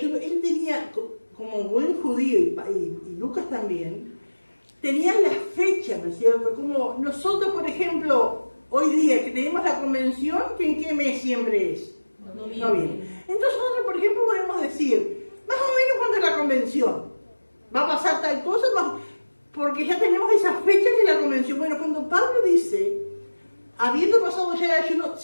él tenía, como buen judío y Lucas también, tenían las fechas, ¿no es cierto? Como nosotros, por ejemplo, hoy día que tenemos la convención, que ¿en qué mes siempre es? Noviembre. Entonces nosotros, por ejemplo, podemos decir, más o menos cuando es la convención, va a pasar tal cosa, porque ya tenemos esas fechas de la convención. Bueno, cuando Pablo dice, habiendo pasado ya el ayuno,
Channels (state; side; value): inverted; both; correlation -1.00